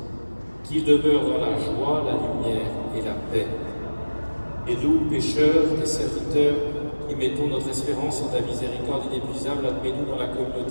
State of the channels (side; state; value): both; inverted; correlation -1.00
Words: qu'ils demeurent dans la joie, la lumière et la paix. Et nous, pécheurs, tes serviteurs, qui mettons notre espérance en ta miséricorde inépuisable, admets-nous dans la